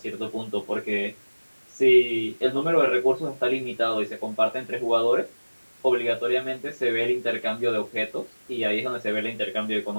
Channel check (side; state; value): both; inverted; correlation -1.00